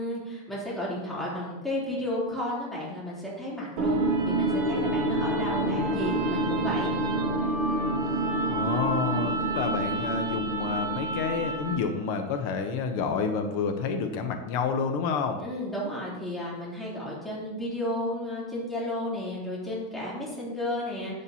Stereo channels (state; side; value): normal; both; correlation 0.05